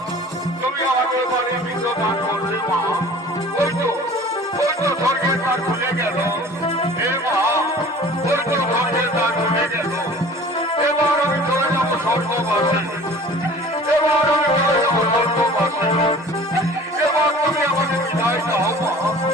তুমি আমাকে বাড়ির পিণ্ড দান করলে মা, ওই তো স্বর্গের দ্বার খুলে গেল। এ মা, ওই তো স্বর্গের দ্বার খুলে গেল। এবার আমি চলে যাবো স্বর্গবাসে, এবার আমি চলে যাবো স্বর্গবাসে। এবার তুমি আমাকে বিদায় দাও মা,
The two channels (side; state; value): both; normal; correlation 0.45